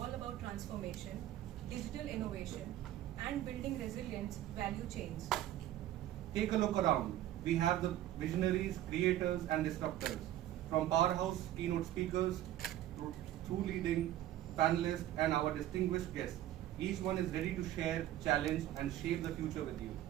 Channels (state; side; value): quieter; left; 13.2 dB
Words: about transformation, digital innovation, and building resilient value chains. Take a look around. We have the visionaries, creators, and disruptors, from powerhouse keynote speakers through leading panelists and our distinguished guests. Each one is ready to share, challenge, and shape the future with you.